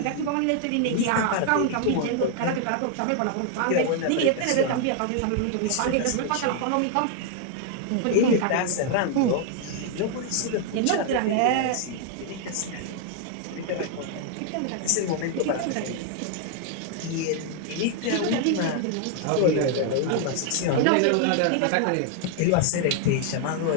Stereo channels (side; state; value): both; different; correlation 0.00